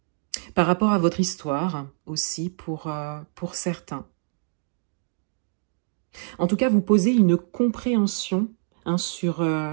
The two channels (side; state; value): left; silent; digital silence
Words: par rapport à votre histoire aussi pour certains. En tout cas, vous posez une compréhension sur